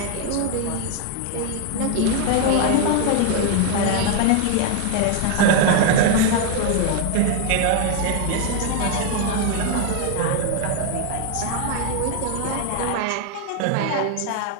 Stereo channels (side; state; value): both; different; correlation 0.00